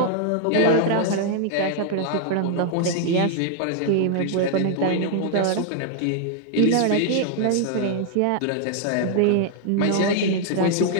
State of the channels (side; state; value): both; different; correlation -0.01